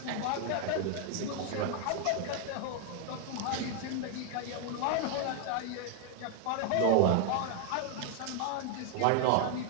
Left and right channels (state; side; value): different; both; correlation 0.00